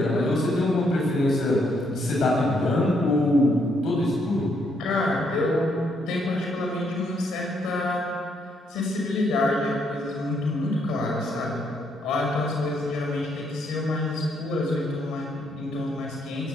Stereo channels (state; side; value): normal; both; correlation 0.73